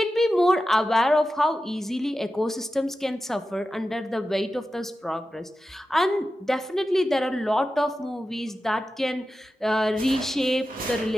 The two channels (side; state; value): both; normal; correlation 0.92